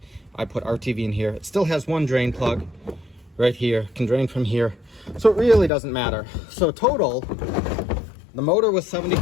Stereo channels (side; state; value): right; drops out; at 5.7 s